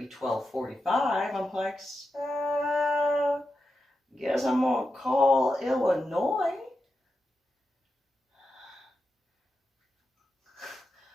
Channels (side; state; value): both; normal; correlation 0.88